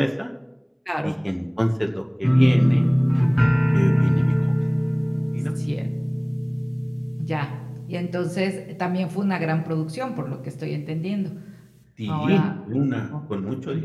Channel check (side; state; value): both; identical; correlation 1.00